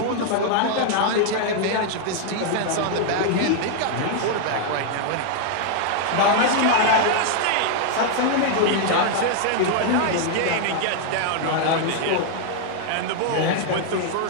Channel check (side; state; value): both; different; correlation 0.00